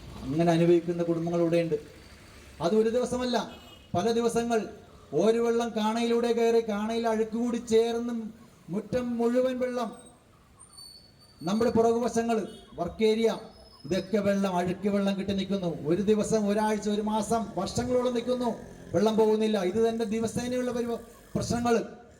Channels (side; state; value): both; identical; correlation 1.00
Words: അങ്ങനെ അനുഭവിക്കുന്ന കുടുംബങ്ങൾ ഇവിടെയുണ്ട്. അത് ഒരു ദിവസമല്ല, പല ദിവസങ്ങൾ. ഒരു വെള്ളം കാണയിലൂടെ കയറി കാണയിൽ അഴുക്കുകൂടി ചേർന്ന് മുറ്റം മുഴുവൻ വെള്ളം. നമ്മുടെ പുറകുവശങ്ങൾ, വർക്ക് ഏരിയ, ഇതൊക്കെ വെള്ളം, അഴുക്ക് വെള്ളം കിട്ടി നിൽക്കുന്നു. ഒരു ദിവസം, ഒരാഴ്ച, ഒരു മാസം, വർഷങ്ങളോളം നിൽക്കുന്നു, വെള്ളം പോകുന്നില്ല. ഇത് തന്നെ ദിവസേനയുള്ള പ്രശ്നങ്ങൾ.